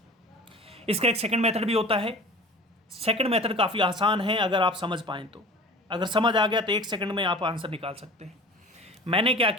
इसका एक सेकंड मेथड भी होता है। सेकंड मेथड काफ़ी आसान है अगर आप समझ पाएँ तो। अगर समझ आ गया तो 1 सेकंड में आप आंसर निकाल सकते हैं। मैंने क्या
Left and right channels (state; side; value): normal; both; correlation 0.40